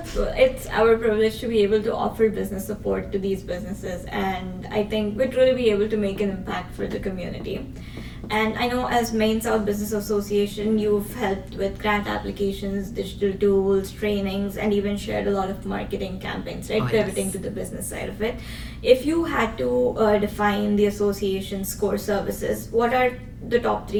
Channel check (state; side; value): identical; both; correlation 1.00